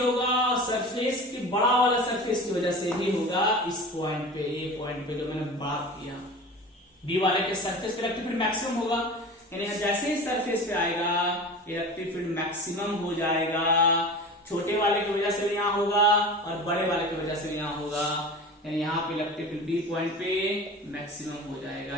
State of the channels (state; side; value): normal; both; correlation 0.34